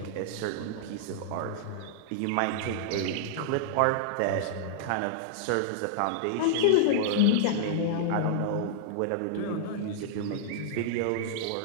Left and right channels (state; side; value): different; both; correlation -0.02